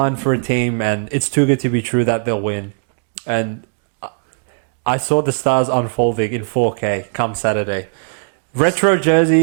for a team and it's too good to be true that they'll win. And I saw the stars unfolding in 4K come Saturday. Retro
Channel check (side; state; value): left; silent; 67 dB below the other